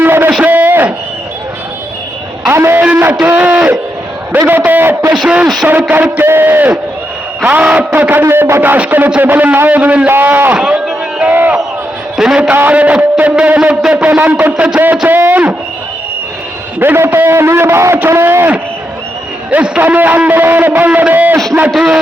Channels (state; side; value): normal; both; correlation 0.83